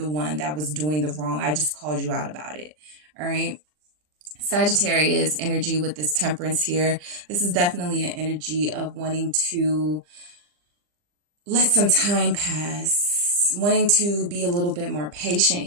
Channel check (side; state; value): left; late; 40 ms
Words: one that was doing the wrong. I just called you out about it. All right. Sagittarius energy with this Temperance here. This is definitely an energy of wanting to let some time pass, wanting to be a little bit more patient